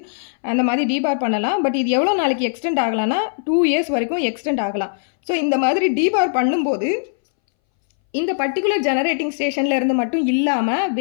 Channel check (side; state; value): right; silent; 63 dB below the other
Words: அந்த மாதிரி டீபார் பண்ணலாம். பட் இது எவ்வளோ நாளைக்கு எக்ஸ்டெண்ட் ஆகலாம்னா 2 years வரைக்கும் எக்ஸ்டெண்ட் ஆகலாம். ஸோ இந்த மாதிரி டீபார் பண்ணும்போது இந்த பர்டிகுலர் ஜெனரேட்டிங் ஸ்டேஷனில் இருந்து மட்டும் இல்லாமல்